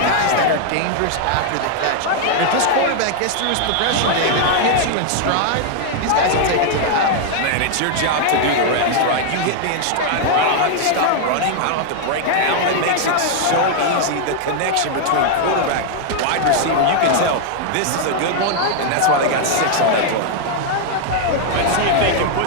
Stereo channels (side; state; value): both; different; correlation 0.00